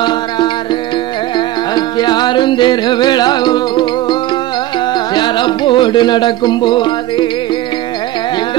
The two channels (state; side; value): quieter; left; 15.1 dB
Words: யாரும் திருவிழாவும் சிறப்போடு நடக்கும் போது எங்க